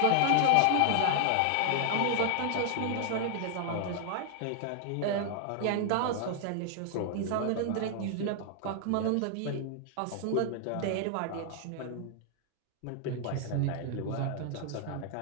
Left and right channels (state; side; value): different; both; correlation 0.00